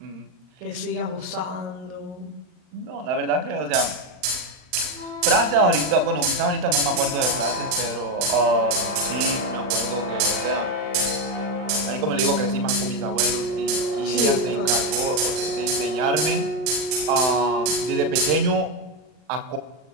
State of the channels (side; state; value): left; late; 39 ms